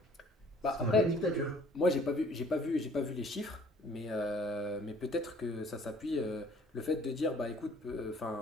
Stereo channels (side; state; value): both; normal; correlation 0.55